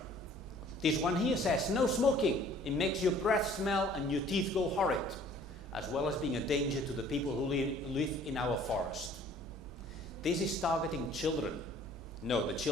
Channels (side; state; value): both; normal; correlation 0.54